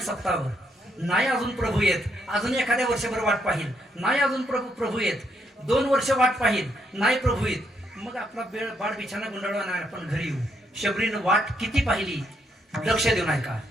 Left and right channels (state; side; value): normal; both; correlation 0.75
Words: सप्ताहभर, नाही अजून प्रभू येत, अजून एखाद्या वर्षभर वाट पाहिल, नाही अजून प्रभू येत, 2 वर्ष वाट पाहिल, नाही प्रभू येत, मग आपला बाळ बिछाना गुंडाळवा नाही, आपण घरी येऊ. शबरीनं वाट किती पाहिली, लक्ष देऊ नाही का.